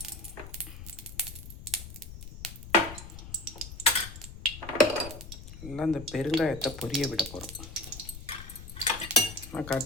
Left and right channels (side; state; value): left; noise; rumble, 12 dB below the sound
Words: எல்லாம் இந்த பெருங்காயத்தை பொரிய விட போகிறோம். நான்